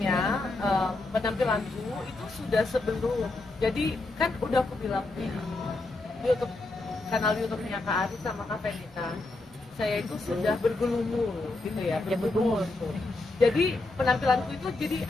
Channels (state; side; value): quieter; right; 3.1 dB